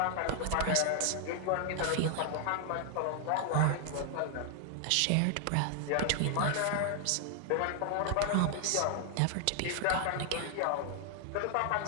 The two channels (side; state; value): both; different; correlation 0.00